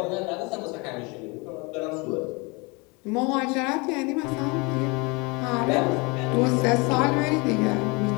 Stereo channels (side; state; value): right; quieter; 28.3 dB